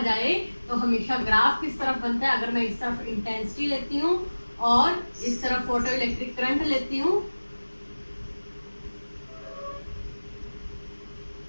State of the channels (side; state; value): both; inverted; correlation -1.00